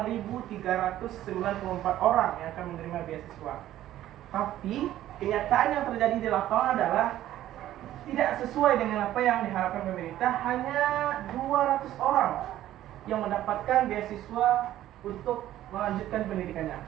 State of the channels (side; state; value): left; quieter; 13.3 dB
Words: orang yang akan menerima beasiswa. Tapi kenyataan yang terjadi di lapangan adalah tidak sesuai dengan apa yang diharapkan pemerintah. Hanya 200 orang yang mendapatkan beasiswa untuk melanjutkan pendidikannya.